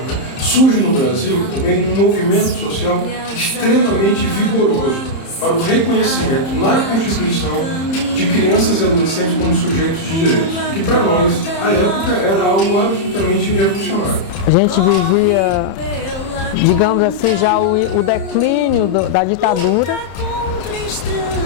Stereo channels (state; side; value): late; right; 31 ms